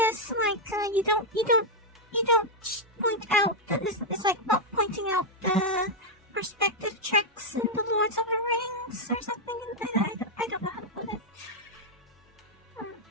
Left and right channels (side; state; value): both; normal; correlation -0.01